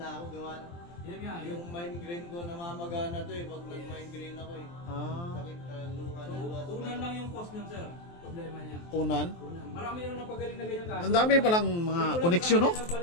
ako gawa. Yan nga, Yung migraine ko namamagana to eh, pag nag-migraine ako eh. Ah, Sakit luha So, na luha. unan lang yung cost niyan sir. Problema niya. unan. Unan. Marami yung napagaling na ganyan kaso. Ang dami palang mga koneksyon, no?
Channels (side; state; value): right; late; 23 ms